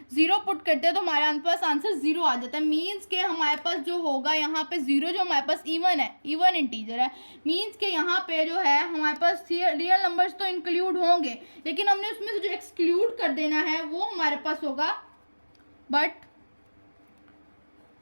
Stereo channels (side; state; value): both; inverted; correlation -1.00